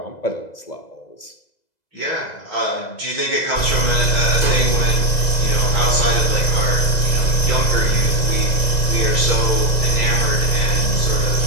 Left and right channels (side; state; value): right; late; 2.0 ms